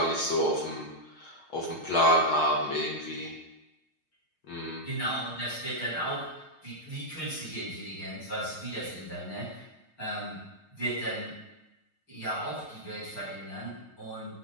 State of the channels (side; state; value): right; late; 6.5 ms